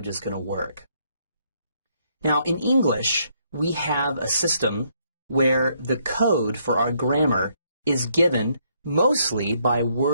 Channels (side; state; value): both; inverted; correlation -0.71